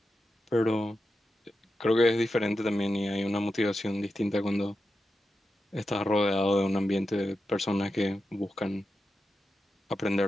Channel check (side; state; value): both; normal; correlation 0.89